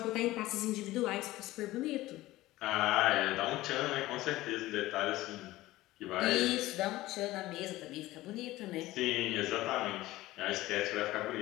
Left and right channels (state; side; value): quieter; right; 17.3 dB